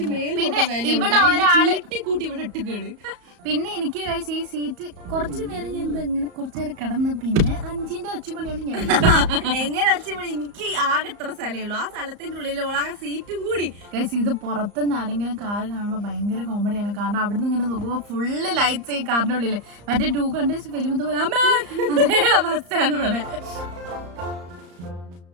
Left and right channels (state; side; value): late; left; 34 ms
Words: കൂട്ടി ഇവിടെ ഇട്ടുകയാണ്. പിന്നെ എനിക്ക് ഈ സീറ്റ് കുറച്ചു നേരം ഞാൻ ഇങ്ങനെ കുറച്ചു നേരം കിടന്ന് പിന്നെ 5ന്റെ ഒച്ചമണിയോണ്ട് ഞാൻ എങ്ങനെ ഒച്ചമണി, എനിക്ക് ആകെ എത്ര സ്ഥലമേ ഉള്ളൂ, ആ സ്ഥലത്തിന്റെ ഉള്ളിൽ ആ സീറ്റും കൂടി. ഇത് പുറത്തുനിന്ന് ആരെങ്കിലും കാർ കാണുമ്പോൾ ഭയങ്കര കോമഡിയാണ്. കാരണം അവിടുന്ന് ഇങ്ങനെ നോക്കുമ്പോൾ ഫുള്ള് ലൈറ്റ്സ് ഈ കാറിന്റെ ഉള്ളില്. മറ്റേ 2 കണ്ടേഴ്സ് ഫിലിം പോലെ അമ്മേ അതേ അവസ്ഥയാണ് ഇവിടെ.